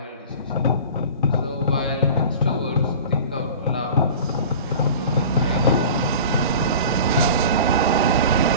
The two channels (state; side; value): inverted; both; correlation -0.38